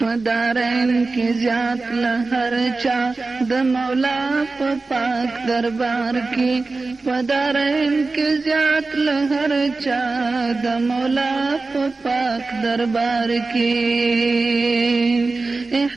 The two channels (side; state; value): left; quieter; 3.7 dB